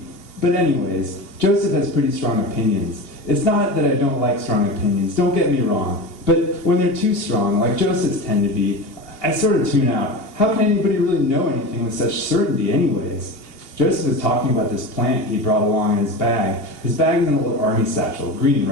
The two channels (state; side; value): late; right; 2.8 ms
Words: But anyways, Joseph has pretty strong opinions. It's not that I don't like strong opinions, don't get me wrong. But when they're too strong, like Joseph's tend to be, I sort of tune out. How can anybody really know anything with such certainty anyways? Joseph was talking about this plant he brought along in his bag. His bag is an old army satchel, green,